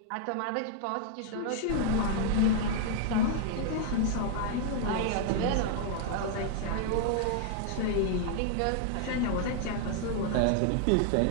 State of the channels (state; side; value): different; both; correlation 0.00